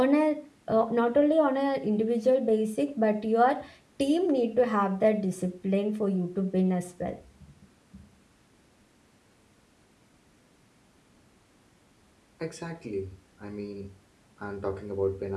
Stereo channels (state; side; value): identical; both; correlation 1.00